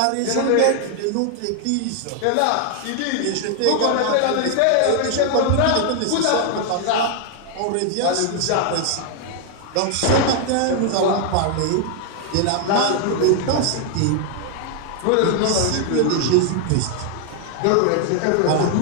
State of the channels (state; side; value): different; both; correlation 0.00